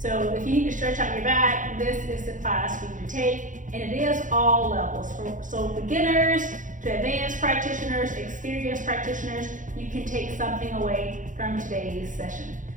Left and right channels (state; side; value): late; left; 0.37 ms